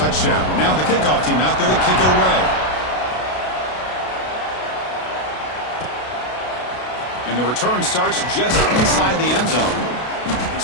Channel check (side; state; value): right; late; 32 ms